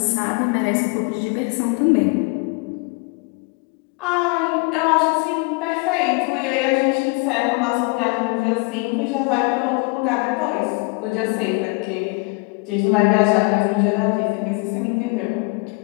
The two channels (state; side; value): quieter; right; 29.4 dB